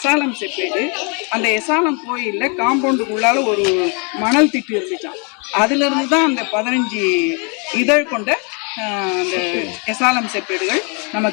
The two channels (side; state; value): right; quieter; 35.2 dB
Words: செப்பேடு. அந்த எசாலம் கோயிலில் காம்பவுண்டுக்குள்ளால ஒரு மணல் திட்டு இருந்துச்சான். அதிலிருந்து தான் அந்த 15 இதழ் கொண்ட அந்த எசாலம் செப்பேடுகள்